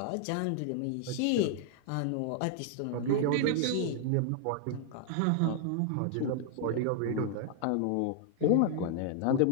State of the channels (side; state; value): both; different; correlation -0.01